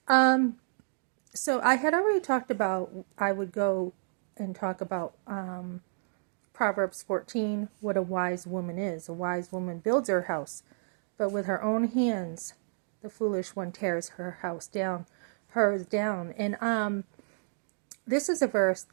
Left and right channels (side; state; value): left; silent; digital silence